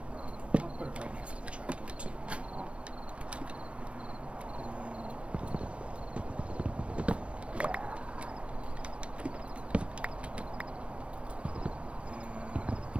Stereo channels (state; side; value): late; left; 0.061 ms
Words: I'll put it right next to the trapdoor too.